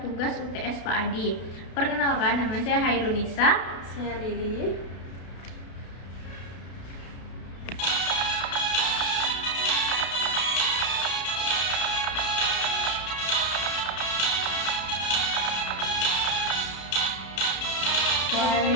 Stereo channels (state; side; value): late; right; 32 ms